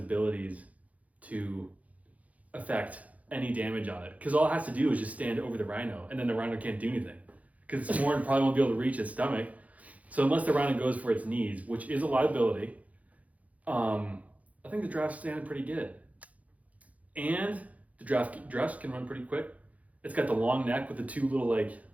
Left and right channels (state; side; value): late; left; 0.070 ms